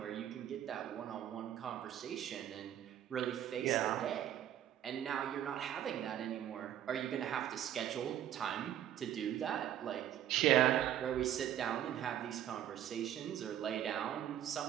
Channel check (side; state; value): left; quieter; 11.2 dB